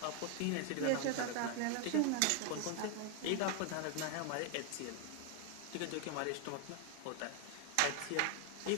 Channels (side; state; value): both; different; correlation 0.00